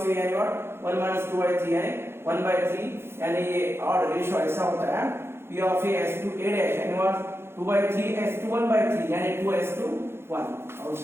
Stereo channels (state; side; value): late; left; 0.12 ms